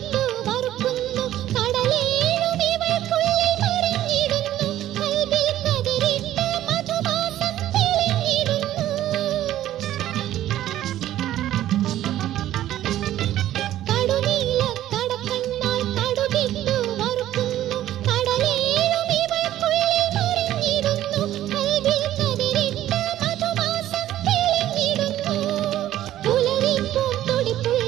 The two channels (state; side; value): quieter; left; 13.1 dB